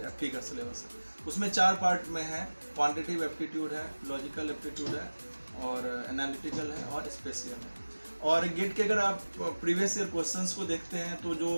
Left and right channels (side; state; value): both; inverted; correlation -1.00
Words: एप्टी का सिलेबस है। उसमें 4 पार्ट में है। क्वांटिटेटिव एप्टीट्यूड है, लॉजिकल एप्टीट्यूड है, और एनालिटिकल है, और स्पेशियल है। और गेट के अगर आप प्रीवियस ईयर क्वेश्चंस को देखते हैं तो जो